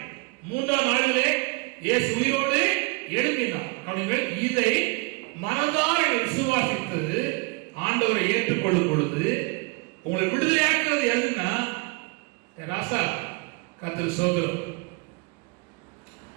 3ஆம் நாளிலே இயேசு உயிரோடு எழும்பினார். கவனிங்கள். இதை மனதார விசுவாசித்து ஆண்டவரை ஏற்றுக்கொள்ளும் பொழுது உங்களை விடுதலையாக்குறது எதுன்னா, ராசா கர்த்தர் சோதரம்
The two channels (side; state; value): left; quieter; 28.4 dB